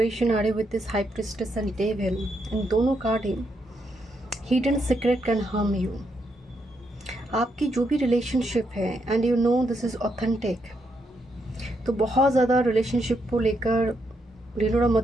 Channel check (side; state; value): both; normal; correlation 0.79